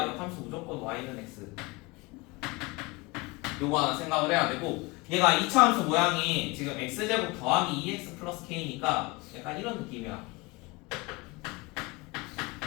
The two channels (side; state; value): right; quieter; 24.9 dB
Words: 역함수 무조건 y는 x. 요거 하나 생각을 해야 되고 얘가 2차 함수 모양이 지금 x제곱 더하기 2x 플러스 k니까 약간 이런 느낌이야.